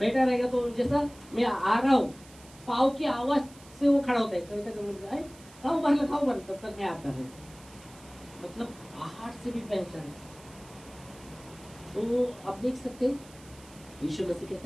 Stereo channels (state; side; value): noise; right; hiss, 22 dB below the sound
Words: रहेगा तो जैसा मैं आ रहा हूँ पाँव की आवाज से वो खड़ा होता है, कभी तक खाओ बंद तब तक मैं आता रहता। मतलब आहार से भी पहचान। तो आप देख सकते हैं यीशु मसीह